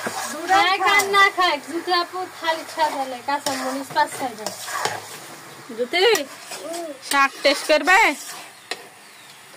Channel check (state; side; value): identical; both; correlation 1.00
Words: না খায় জ্যোতি আপু খালি খাবে কাঁচা মরিচ 5-6 টা জ্যোতি শাক টেস্ট করবে